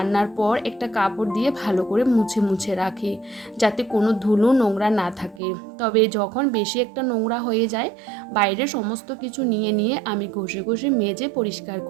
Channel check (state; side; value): drops out; left; at 5.4 s